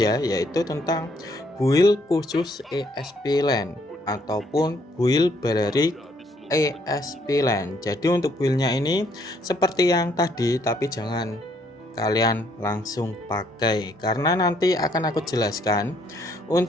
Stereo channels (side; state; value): both; normal; correlation 0.68